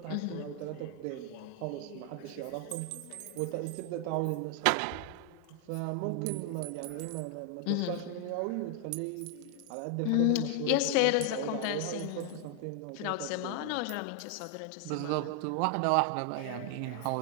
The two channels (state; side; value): different; both; correlation 0.00